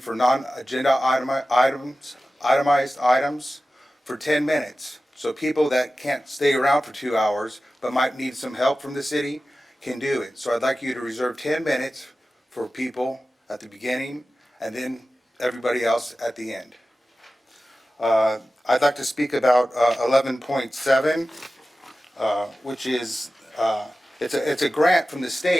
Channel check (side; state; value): both; normal; correlation 0.95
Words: non-agenda itemized items for 10 minutes. So people that can't stay around for 2 hours but might need some help from the city can do it. So I'd like you to reserve 10 minutes for people at the beginning, and then everybody else at the end. I'd like to speak about 11.7, which is it's a grant from the